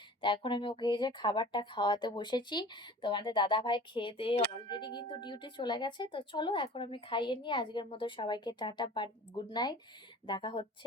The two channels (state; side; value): normal; both; correlation 0.43